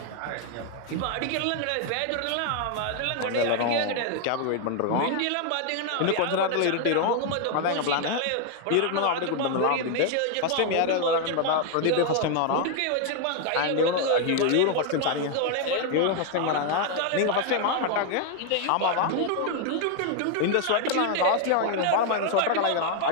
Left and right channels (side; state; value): both; different; correlation 0.00